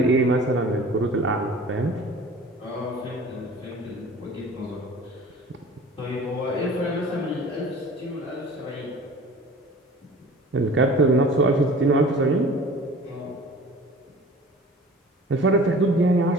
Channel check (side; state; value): both; normal; correlation 0.43